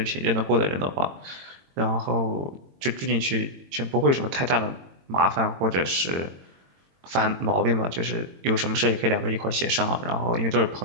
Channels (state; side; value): late; left; 22 ms